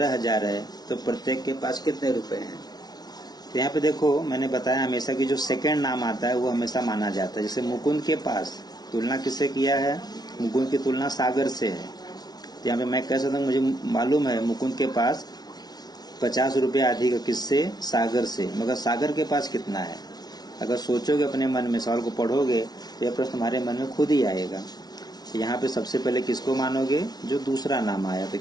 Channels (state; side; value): late; right; 0.19 ms